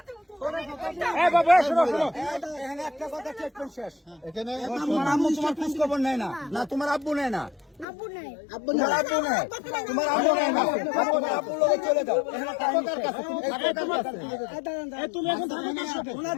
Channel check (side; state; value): right; drops out; at 7.9 s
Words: একটা কথা শেষ। এখানে তোমার আম্মু তোমার খোঁজ খবর নেয় না, না তোমার আব্বু নেয় না? আব্বু নাই। তোমার আব্বু নাই, তোমার আব্বু নাই না, তোমার আব্বুর লগে চলে যাও। তুমি এখন থাকো কার সাথে?